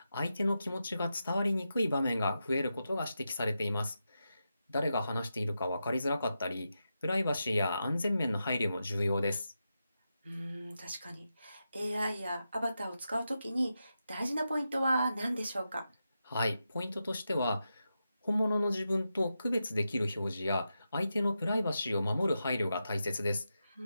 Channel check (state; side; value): inverted; both; correlation -0.88